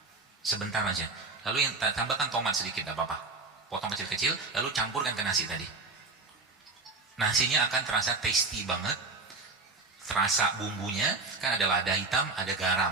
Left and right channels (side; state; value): left; quieter; 3.7 dB